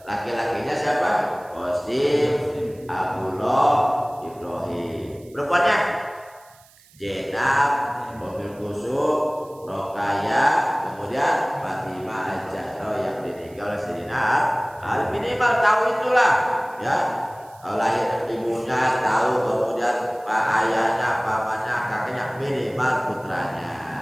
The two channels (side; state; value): right; noise; hiss, 27 dB below the sound